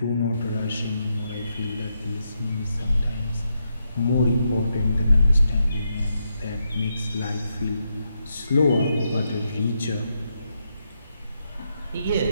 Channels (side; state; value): both; inverted; correlation -0.82